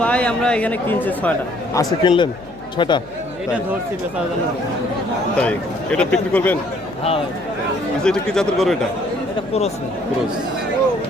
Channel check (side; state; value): left; noise; hum, 24 dB below the sound